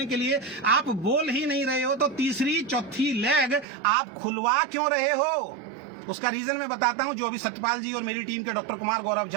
के लिए आप बोल ही नहीं रहे हो तो तीसरी चौथी लाख आप खुलवा क्यों रहे हो? उसका रीजन मैं बताता हूं। जो अभी सत्यपाल जी और मेरी टीम के डॉक्टर कुमार, गौरव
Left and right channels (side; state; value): left; drops out; at 3.7 s